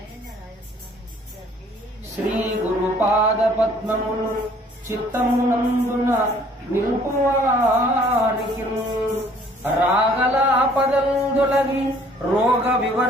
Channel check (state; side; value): normal; both; correlation 0.57